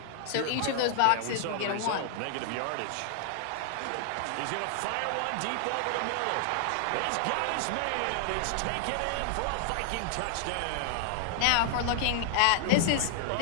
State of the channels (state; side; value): different; both; correlation 0.00